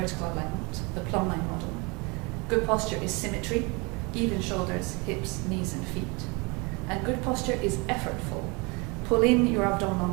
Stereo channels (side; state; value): left; quieter; 28.6 dB